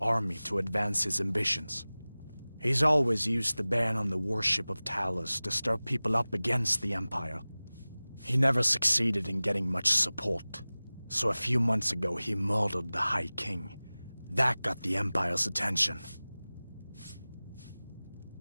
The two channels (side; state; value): both; inverted; correlation -0.99